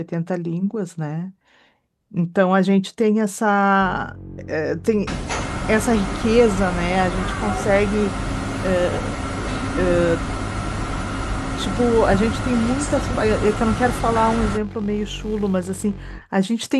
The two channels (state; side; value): identical; both; correlation 1.00